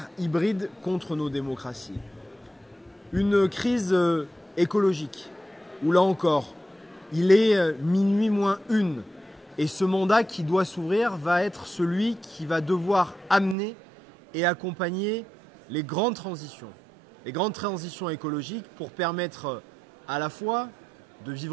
hybride contre nos démocraties. Une crise écologique, où là encore, il est minuit moins 1 et ce mandat qui doit s'ouvrir va être celui qui va devoir amener et accompagner les grandes transitions écologiques pour permettre à la fois de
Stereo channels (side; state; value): left; drops out; at 13.6 s